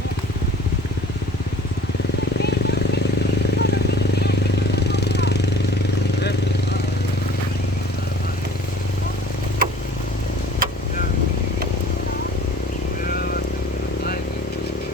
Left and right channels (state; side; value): normal; both; correlation 0.49